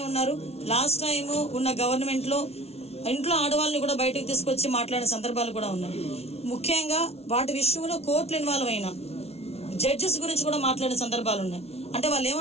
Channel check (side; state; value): right; late; 0.30 ms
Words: ఉన్నారు, లాస్ట్ టైం ఉన్న గవర్నమెంట్ లో ఇంట్లో ఆడవాళ్ళని కూడా బయటకు తీసుకొచ్చి మాట్లాడిన సందర్భాలు కూడా ఉన్నాయి. ముఖ్యంగా వాటి విషయంలో కోర్టులు ఇన్వాల్వ్ అయిన జడ్జెస్ గురించి కూడా మాట్లాడిన సందర్భాలు ఉన్నాయి. అంటే వాళ్ళు